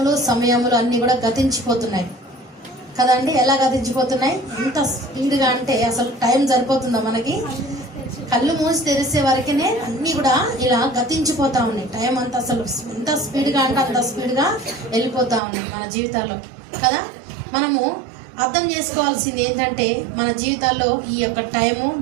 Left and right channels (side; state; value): left; drops out; at 15.4 s